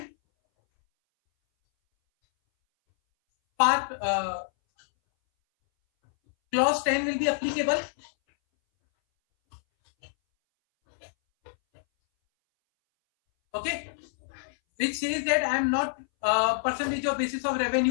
part clause 10 will be applicable. Okay, which says that I am not percentage of basis of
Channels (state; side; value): silent; right; 60 dB below the other